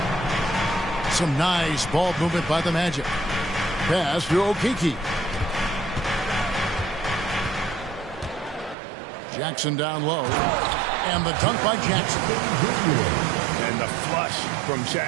Some nice ball movement by the Magic. Pass to Okeke. Jackson down low. And the dunk by Jackson. And the flush from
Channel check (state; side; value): drops out; left; at 8.8 s